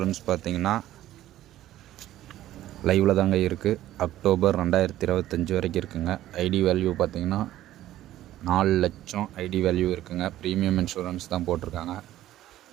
பார்த்திங்கன்னா லைவில் தாங்க இருக்குது. அக்டோபர் 2025 வரைக்கும் இருக்குங்க. ஐடி வேல்யூ பார்த்திங்கன்னா 4 லட்சம் ஐடி வேல்யூ இருக்குங்க. ப்ரீமியம் இன்சூரன்ஸ் தான் போட்டிருக்காங்க.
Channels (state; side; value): quieter; left; 13.8 dB